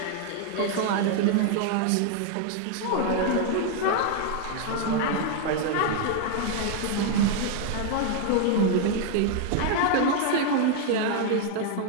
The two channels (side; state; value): both; different; correlation 0.00